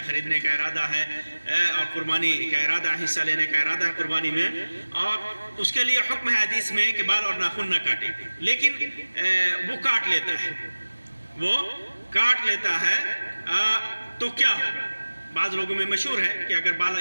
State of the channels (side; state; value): both; inverted; correlation -1.00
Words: خریدنے کا ارادہ ہے اور قربانی کا ارادہ، حصہ لینے کا ارادہ ہے قربانی میں، اور اس کے لیے حکم ہے حدیث میں کہ بال اور ناخن نہ کاٹے، لیکن وہ کاٹ لیتا ہے تو کیا ہوگا؟ بعض لوگوں میں مشہور ہے کہ اگر